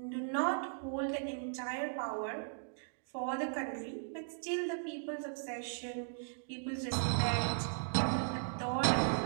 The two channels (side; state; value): left; silent; digital silence